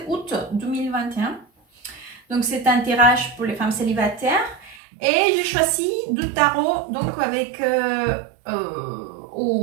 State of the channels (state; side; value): drops out; left; at 4.8 s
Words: 2021. Donc c'est un tirage pour les femmes célibataires. Et j'ai choisi du tarot donc avec